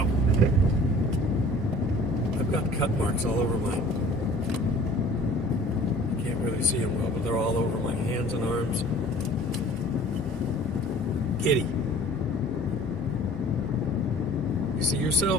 I've got cut marks all over my... You can't really see them well, but they're all over my hands and arms. Kitty. You see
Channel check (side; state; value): both; normal; correlation 0.49